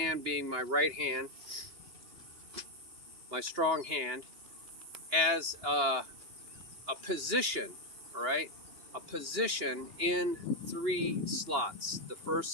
being my right hand, my strong hand, as a position, all right? A position in 3 slots, the first,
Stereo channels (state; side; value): late; left; 2.8 ms